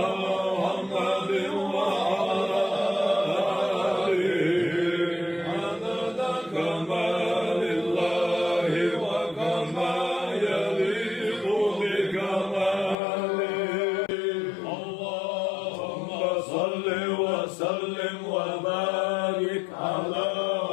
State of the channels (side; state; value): right; drops out; at 13.0 s